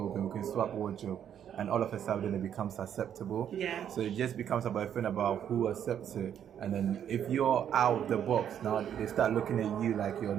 we can swap wardrobe, and all of a sudden it becomes acceptable. Yeah. So it just becomes about a thing about who accepts it. And then if you're out of the box, now they start looking at you like you're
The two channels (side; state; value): left; quieter; 9.3 dB